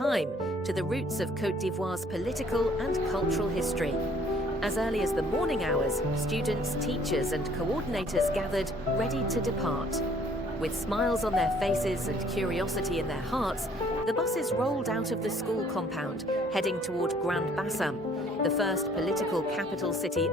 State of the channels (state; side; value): normal; both; correlation 0.59